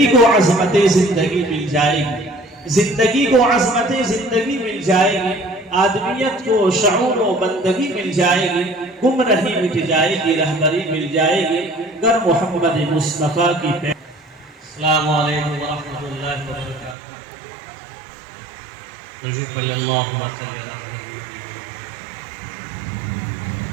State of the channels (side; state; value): left; drops out; at 16.9 s